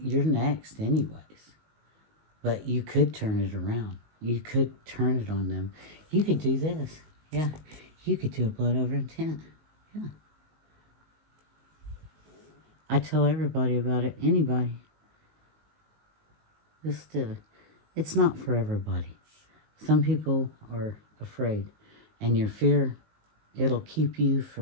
next anyways. But you could turn it around. You could turn it on them. You could do this. Yeah. You could do a blood over intent. Yeah. I tell everybody about it. Anybody. It's not for everybody. Some people are afraid. And your fear, it'll keep you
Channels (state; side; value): late; left; 19 ms